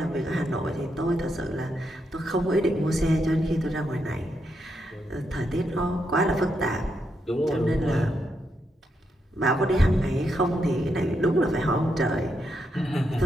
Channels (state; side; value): normal; both; correlation 0.81